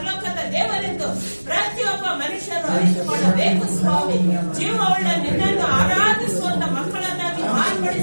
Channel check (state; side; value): inverted; both; correlation -1.00